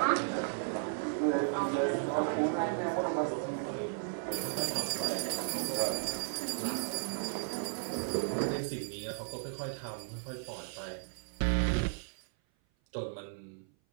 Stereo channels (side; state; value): left; silent; 54 dB below the other